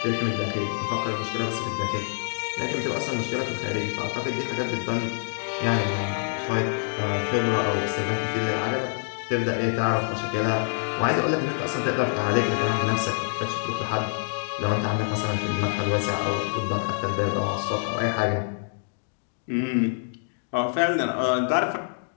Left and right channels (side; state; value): right; silent; digital silence